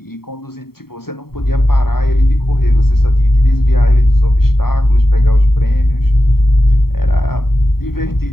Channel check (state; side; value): late; right; 0.94 ms